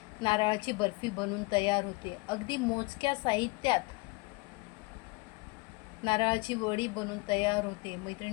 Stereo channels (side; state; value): right; quieter; 25.7 dB